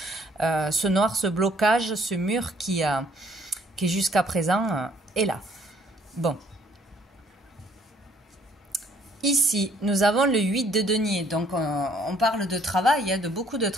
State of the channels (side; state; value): both; normal; correlation 0.63